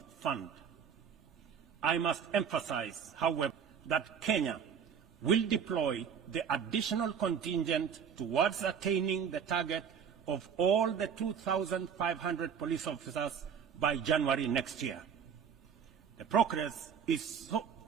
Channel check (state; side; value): quieter; left; 7.3 dB